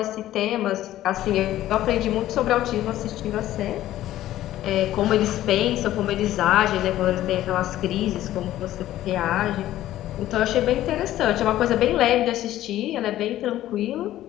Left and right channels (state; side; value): quieter; right; 13.8 dB